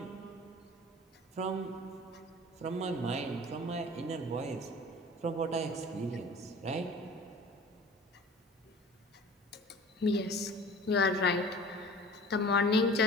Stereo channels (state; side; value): normal; both; correlation 0.43